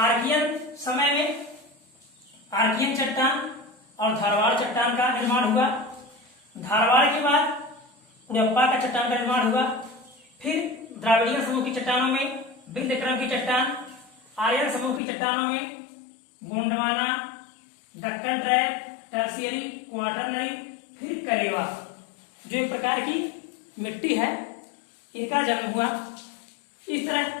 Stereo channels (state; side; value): drops out; right; at 15.0 s